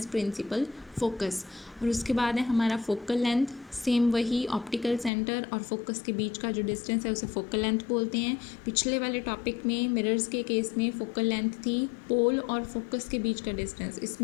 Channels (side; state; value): right; drops out; at 5.1 s